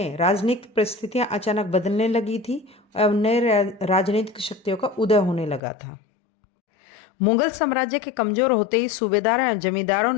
राजनीतिक परिस्थितियां अचानक बदलने लगी थी और नए राजनीतिक शक्तियों का उदय होने लगा था। मुगल साम्राज्य के कमजोर होते ही सूबेदार और जमींदारों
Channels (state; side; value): drops out; right; at 5.6 s